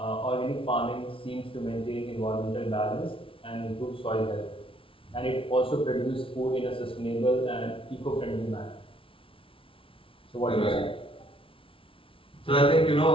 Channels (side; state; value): right; late; 0.26 ms